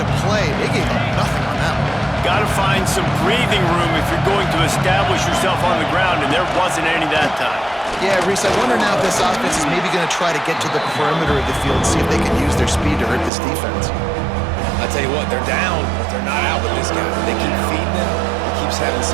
play. They gave up nothing on that one. Got to find some breathing room if you're going to establish yourself on the ground, and there wasn't any that time. Yeah, Reese, I wonder now if this offense is maybe going to try to get to the perimeter of the field and see if they can use their speed to hurt this defense. I tell you what, they're down, but they're not out with this guy. They keep feeding him. He keeps having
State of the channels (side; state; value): left; drops out; at 13.3 s